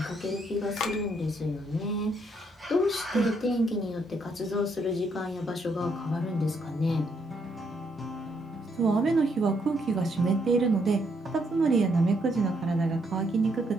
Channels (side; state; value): both; normal; correlation 0.74